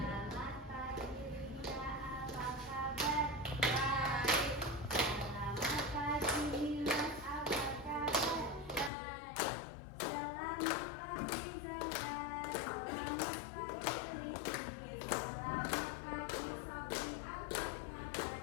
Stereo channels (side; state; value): right; drops out; at 8.9 s